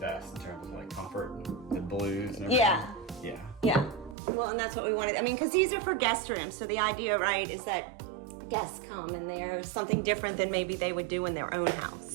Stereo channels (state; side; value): drops out; left; at 4.2 s